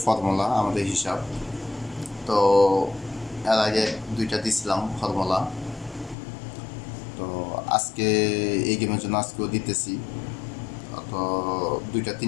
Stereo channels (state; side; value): drops out; right; at 6.2 s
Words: ফর্মুলা আমাদের হিসাব। তো এর আগে দুইটা দিছিলাম ফর্মুলা। তো আজকে এই গেমের জন্য আজকেও দিতেছি। তো দুইটা